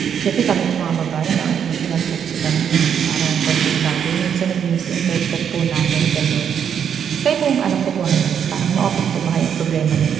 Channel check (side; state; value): left; quieter; 8.1 dB